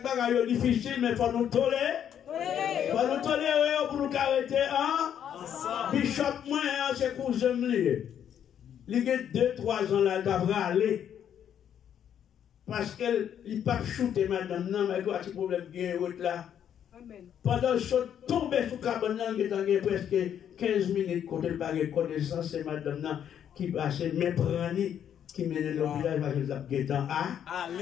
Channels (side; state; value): right; quieter; 9.3 dB